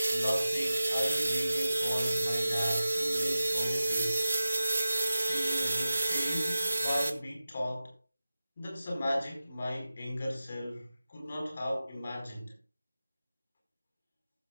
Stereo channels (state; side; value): inverted; both; correlation -0.94